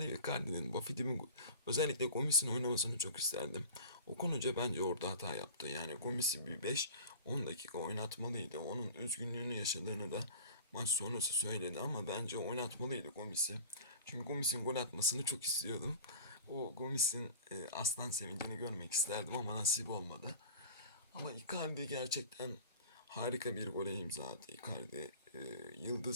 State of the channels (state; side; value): inverted; both; correlation -0.38